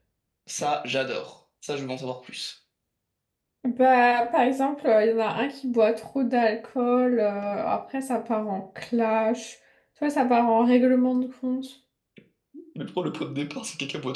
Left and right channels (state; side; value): identical; both; correlation 1.00